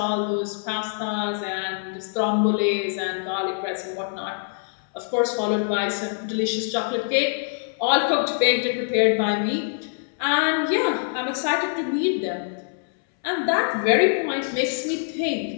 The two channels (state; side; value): silent; right; 62 dB below the other